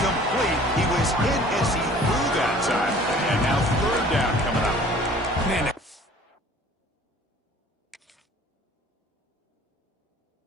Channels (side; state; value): both; normal; correlation 0.50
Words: He was hit as he threw that time. And now 3rd down coming up. Man,